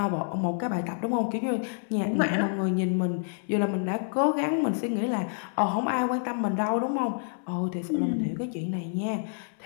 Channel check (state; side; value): silent; right; 59 dB below the other